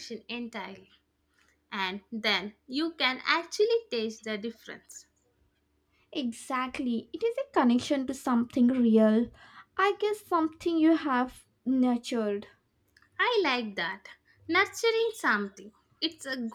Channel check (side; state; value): both; identical; correlation 1.00